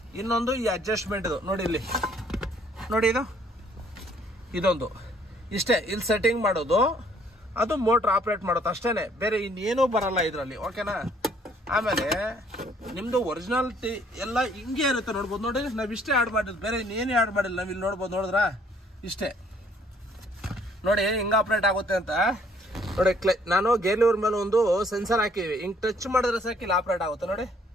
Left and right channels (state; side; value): normal; both; correlation 0.62